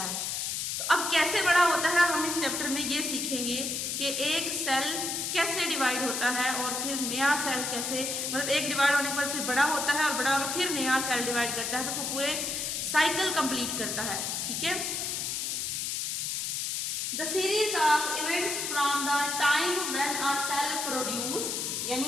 है। तो अब कैसे बड़ा होता है, हम इस चैप्टर में ये सीखेंगे कि एक सेल कैसे डिवाइड होता है और फिर नया सेल कैसे, मतलब एक डिवाइड होने के बाद फिर बड़ा होता है और बड़ा होकर फिर नया सेल डिवाइड करता है, तो वो पूरे साइकिल कंप्लीट करता है। ठीक है, the series of events from the time when a cell produce,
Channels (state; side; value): noise; left; hiss, 1 dB below the sound